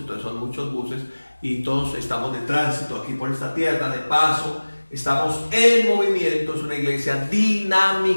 son muchos buses. Y todos estamos de tránsito aquí por esta tierra, de paso, estamos en movimiento, es una iglesia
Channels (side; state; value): both; inverted; correlation -1.00